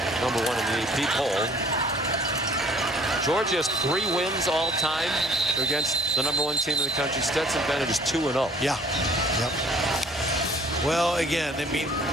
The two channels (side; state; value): both; normal; correlation 0.55